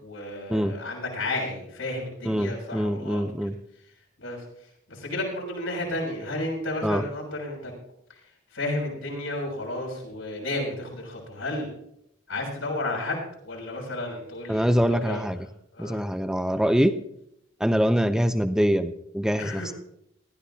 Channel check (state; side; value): normal; both; correlation 0.75